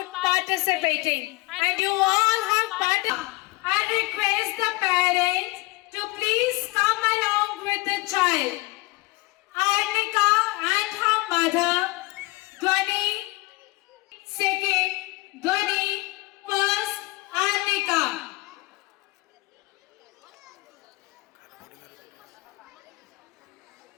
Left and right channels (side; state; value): right; quieter; 23.2 dB